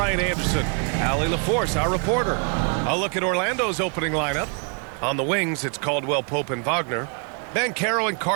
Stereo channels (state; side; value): quieter; left; 38.4 dB